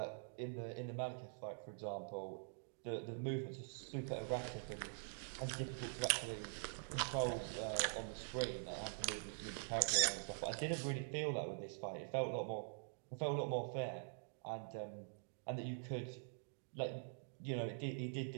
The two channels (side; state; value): left; silent; digital silence